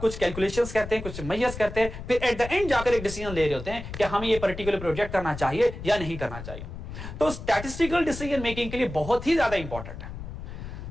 कैलकुलेशंस करते हैं, कुछ मेजर्स करते हैं, फिर एट द एंड जाकर एक डिसीजन ले रहे होते हैं कि हमें ये पर्टिकुलर प्रोजेक्ट करना चाहिए या नहीं करना चाहिए. तो स्टैटिस्टिकल डिसीजन मेकिंग के लिए बहुत ही ज्यादा इंपॉर्टेंट है.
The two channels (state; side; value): noise; left; rumble, 10 dB below the sound